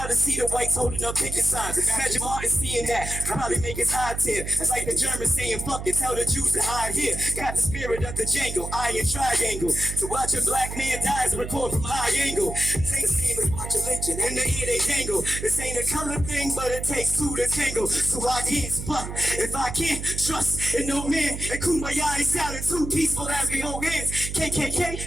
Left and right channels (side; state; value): right; noise; hum, 7 dB below the sound